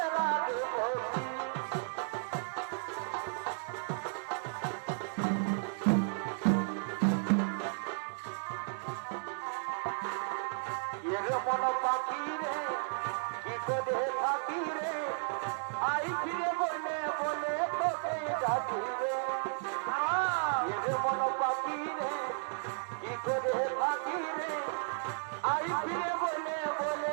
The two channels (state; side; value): silent; left; digital silence